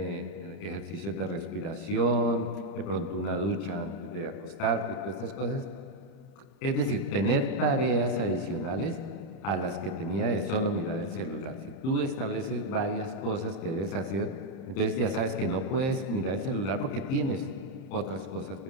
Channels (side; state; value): right; late; 30 ms